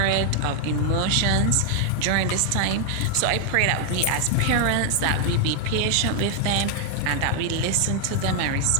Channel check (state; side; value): different; both; correlation 0.00